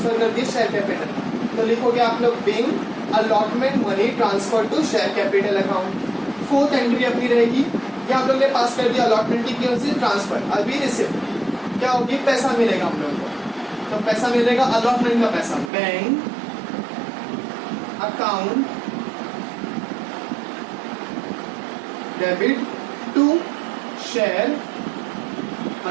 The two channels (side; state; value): left; drops out; at 15.7 s